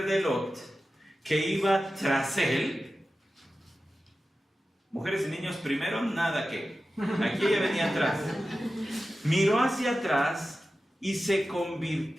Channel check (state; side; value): normal; both; correlation 0.93